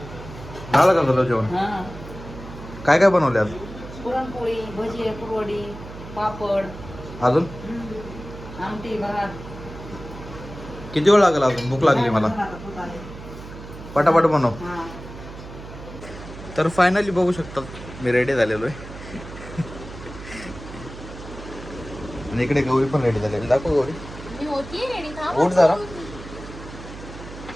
झालं का तुला जेवण? हा. काय काय बनवले आज? पुरणपोळी, भजी, कुरवडी, पापड, अजून आमटी, भात. किती वेळ लागेल अजून? भूक लागली मला. पटापट बनव. हा. तर फायनली बघू शकतात, मी रेडी झालेलो आहे. आणि इकडे गौरी पण रेडी झालेली. दाखव गौरी. मी होतीये रेडी. थांब. उठ जरा.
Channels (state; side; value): noise; right; hum, 13 dB below the sound